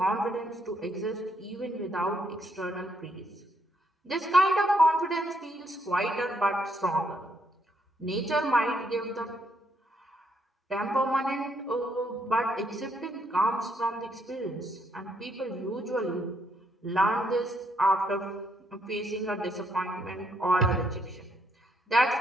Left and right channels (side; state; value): both; normal; correlation 0.73